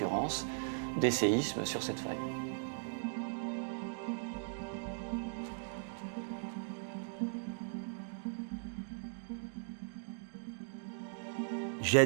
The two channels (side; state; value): left; silent; digital silence